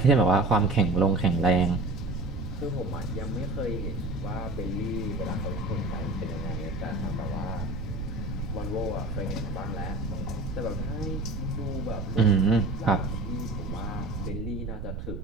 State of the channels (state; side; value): noise; right; rumble, 5 dB below the sound